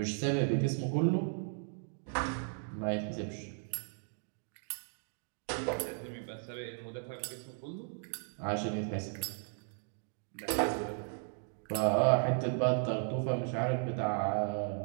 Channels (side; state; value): left; silent; 54 dB below the other